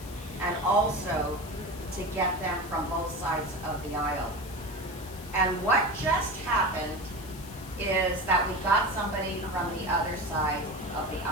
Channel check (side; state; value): left; noise; hiss, 17 dB below the sound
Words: and also to get them from both sides of the aisle. And what just happened is that we got somebody from the other side of the